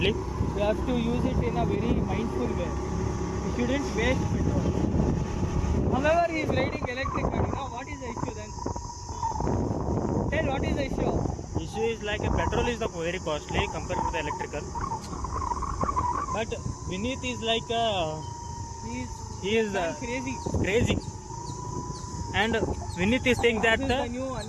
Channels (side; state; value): both; identical; correlation 1.00